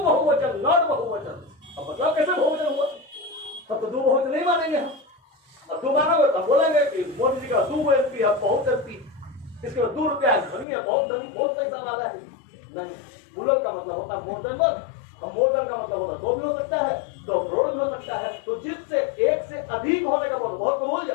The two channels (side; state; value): right; drops out; at 10.7 s